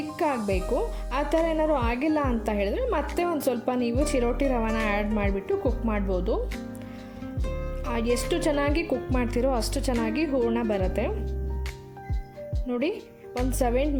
ಆಗಬೇಕು. ಆ ಥರ ಏನಾದ್ರು ಆಗಿಲ್ಲ ಅಂತ ಹೇಳಿದ್ರೆ ಮತ್ತೆ ಒಂದು ಸ್ವಲ್ಪ ನೀವು ಚಿರೋಟಿ ರವೆನ ಆ್ಯಡ್ ಮಾಡಿಬಿಟ್ಟು ಕುಕ್ ಮಾಡ್ಬೋದು. ಎಷ್ಟು ಚೆನ್ನಾಗಿ ಕುಕ್ ಮಾಡ್ತೀರೋ ಅಷ್ಟು ಚೆನ್ನಾಗಿ ಹೂರ್ಣ ಬರುತ್ತೆ. ನೋಡಿ,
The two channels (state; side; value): identical; both; correlation 1.00